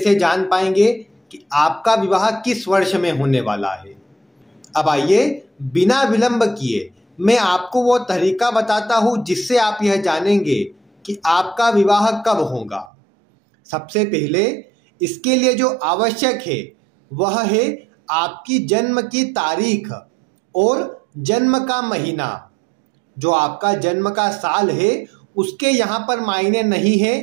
जान पाएंगे कि आपका विवाह किस वर्ष में होने वाला है। अब आइए बिना विलंब किए मैं आपको वो तरीका बताता हूँ जिससे आप यह जानेंगे कि आपका विवाह कब होगा। सबसे पहले इसके लिए जो आवश्यक है वह है आपकी जन्म की तारीख और जन्म का महीना। जो आपका जन्म का साल है उसके यहाँ पर मायने नहीं है।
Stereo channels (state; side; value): drops out; left; at 12.9 s